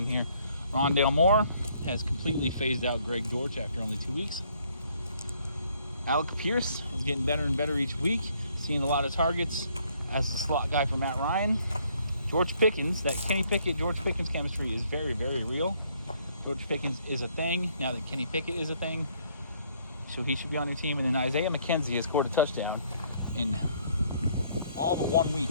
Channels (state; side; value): inverted; both; correlation -0.66